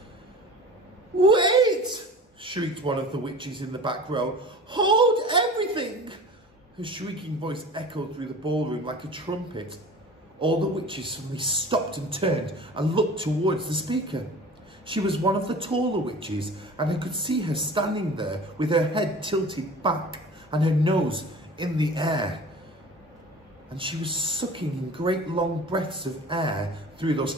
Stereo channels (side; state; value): both; normal; correlation 0.40